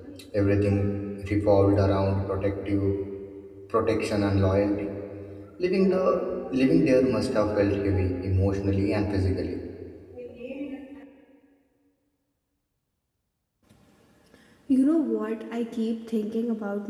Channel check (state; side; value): identical; both; correlation 1.00